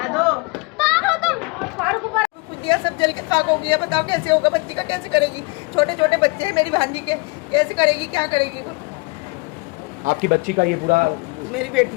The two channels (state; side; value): quieter; right; 28.0 dB